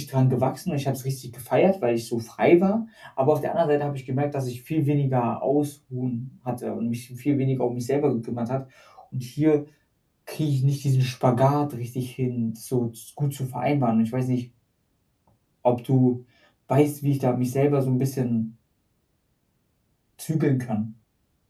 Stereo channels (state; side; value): identical; both; correlation 1.00